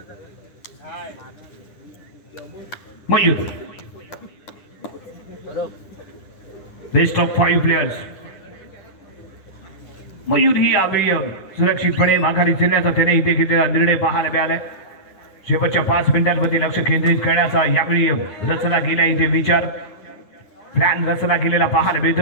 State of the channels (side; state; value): right; late; 9.8 ms